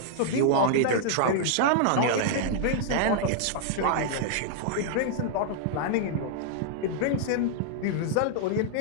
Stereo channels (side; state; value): both; different; correlation -0.01